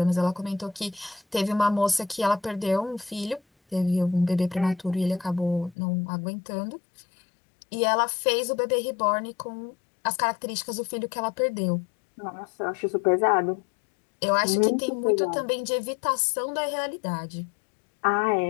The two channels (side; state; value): right; drops out; at 5.8 s